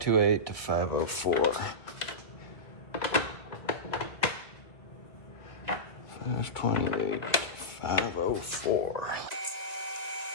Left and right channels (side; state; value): right; late; 2.1 ms